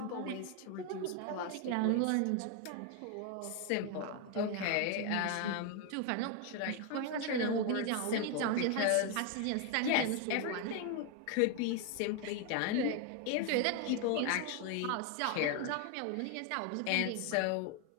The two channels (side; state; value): both; different; correlation 0.01